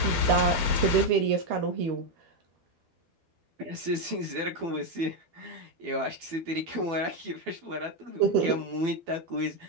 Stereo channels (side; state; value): left; late; 12 ms